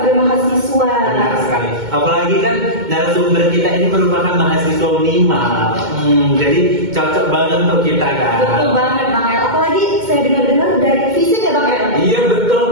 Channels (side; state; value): left; late; 2.2 ms